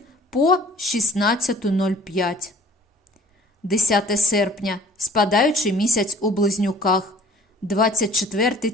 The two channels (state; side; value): normal; both; correlation 0.51